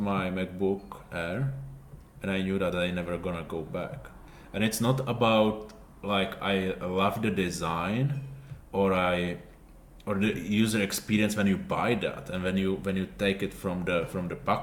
my MacBook Air, and I knew that I never gonna go back. And it's not about like I love the design or the user experience when you buy that and when you take it from the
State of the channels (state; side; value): identical; both; correlation 1.00